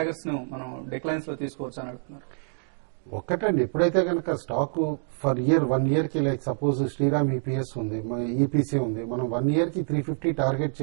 ను మనం డిక్లైన్స్ లో తీసుకోవచ్చు అని అడుగుతున్నారు. ఒక్కటండి, ఎప్పుడైతే కనుక స్టాక్ ఫర్ ఇయర్ 1 year కి లైక్ సపోజ్ శ్రీరామ్ ఈపీఎస్ ఉంది, ఈపీసీ ఉంది, మనం 1 year కి 350 టార్గెట్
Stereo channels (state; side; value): silent; left; digital silence